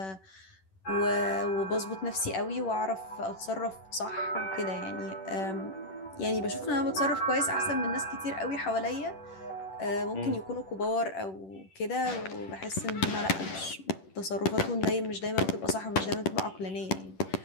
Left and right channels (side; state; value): right; late; 10 ms